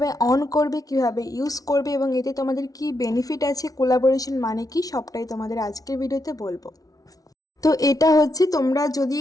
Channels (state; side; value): late; right; 0.18 ms